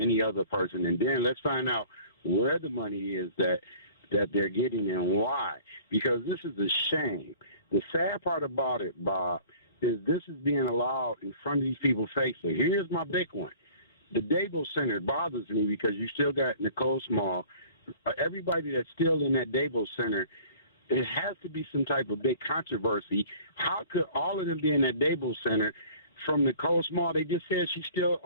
other person, and then let's find out where the money is that they're getting and why. Because this is a shame. The sad part about it, Bob, is this is being allowed in front of these people's faces. Here's my big one. The Devos Center bothers me because you still got Nicole Small. Everybody that's still in that Devos Center, it has to be some type of big controversy. How could all of them be in that Devos Center? From Nicole Small, they just said she's still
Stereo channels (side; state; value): both; inverted; correlation -0.49